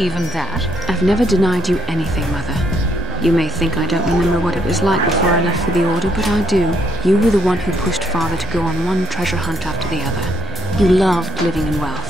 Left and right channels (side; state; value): both; normal; correlation 0.70